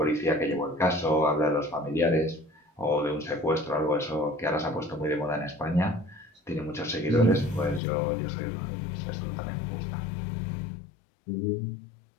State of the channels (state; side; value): drops out; right; at 7.8 s